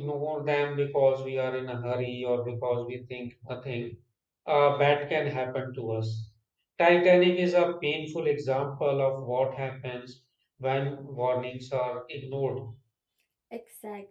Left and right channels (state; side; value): identical; both; correlation 1.00